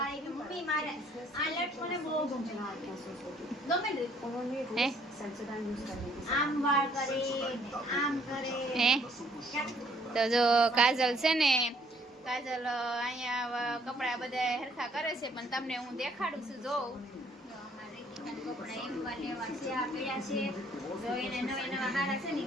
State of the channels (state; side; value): normal; both; correlation 0.63